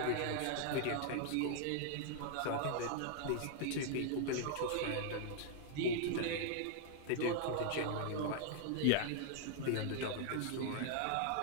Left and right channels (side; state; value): both; different; correlation 0.00